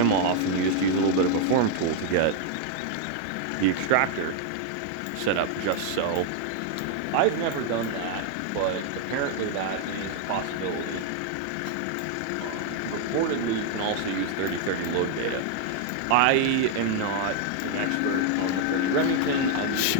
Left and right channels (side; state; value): both; different; correlation 0.00